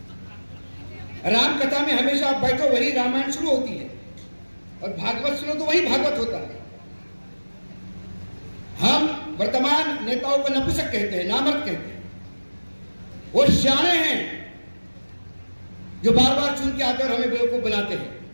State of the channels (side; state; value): both; inverted; correlation -1.00